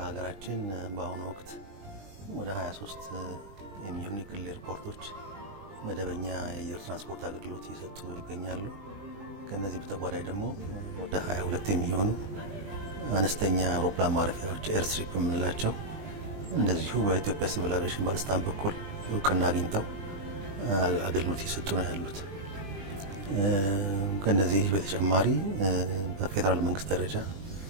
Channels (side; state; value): left; late; 20 ms